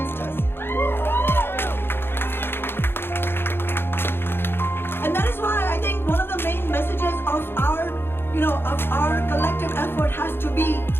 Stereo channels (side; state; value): right; late; 0.11 ms